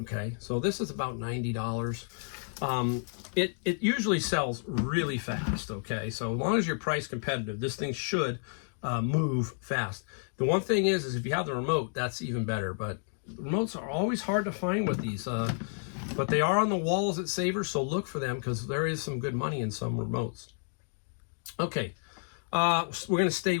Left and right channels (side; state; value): right; silent; digital silence